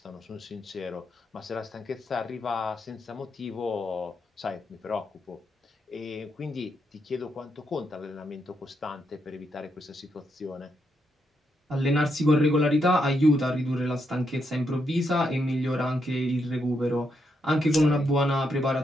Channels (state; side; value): normal; both; correlation 0.80